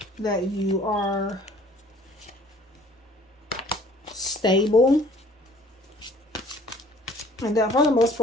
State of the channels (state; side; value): normal; both; correlation 0.54